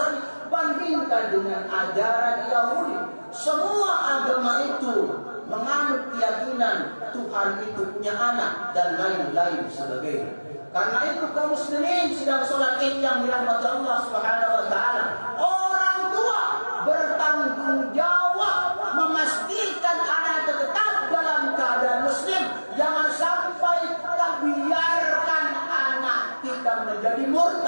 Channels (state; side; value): inverted; both; correlation -1.00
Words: bandingkan dengan ajaran Yahudi. Semua agama itu menganut keyakinan Tuhan itu punya anak dan lain-lain sebagainya. Karena itu kaum muslimin sedang sholat Id yang dirahmati Allah Subhanahu wa taala, orang tua bertanggung jawab memastikan anak tetap dalam keadaan muslim. Jangan sampai kita biarkan anak kita menjadi